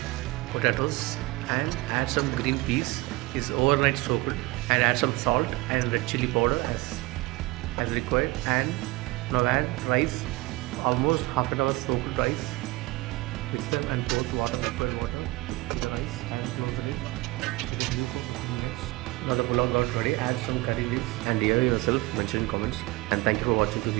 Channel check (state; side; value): quieter; left; 21.5 dB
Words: potatoes and add some green peas is overnight soaked, and add some salt and red chili powder as required, and now add rice, almost half an hour soaked rice. Mix them and pour water, liquid water to the rice and close the lid. It is due for 15 minutes. Now the pulao got ready. Add some curry leaves and hear yourself mention in comments, and thank you for watching to